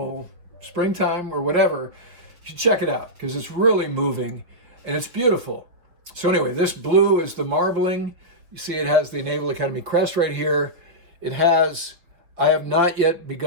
springtime or whatever. You should check it out because it's really moving and it's beautiful. So anyway, this blue is the marbling. You see it has the Naval Academy crest right here. It has, "I have not yet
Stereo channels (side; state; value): left; late; 6.0 ms